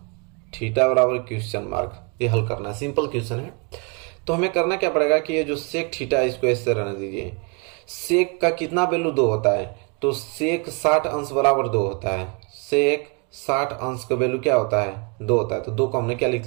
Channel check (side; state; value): left; quieter; 33.8 dB